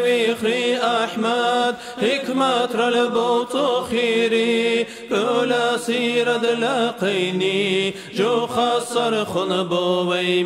بخري أحمد حكمة رلبوت خيري كل سيرد لاقيني جو خسر خنبو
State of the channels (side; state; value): both; identical; correlation 1.00